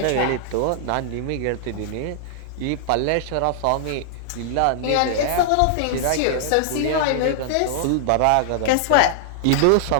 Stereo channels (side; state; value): both; different; correlation -0.01